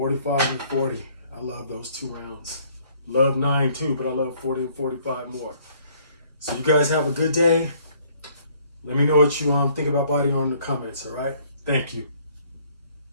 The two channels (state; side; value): inverted; both; correlation -0.62